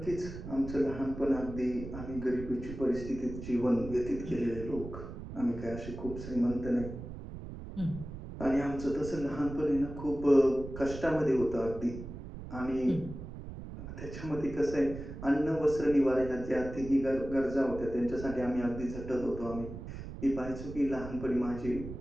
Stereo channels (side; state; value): right; noise; rumble, 10 dB below the sound